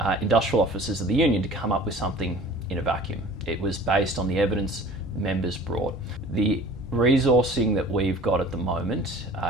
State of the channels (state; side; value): normal; both; correlation 0.44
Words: industrial officers of the union to come up with something in a vacuum. It was based on the evidence members brought. The resourcing that we've got at the moment